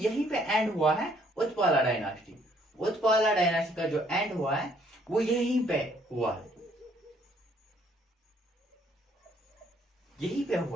पे एंड हुआ है उत्पाला डायनास्टी। उत्पाला डायनास्टी का जो एंड हुआ है वो यहीं पे हुआ है, यहीं पे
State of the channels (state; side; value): normal; both; correlation 0.65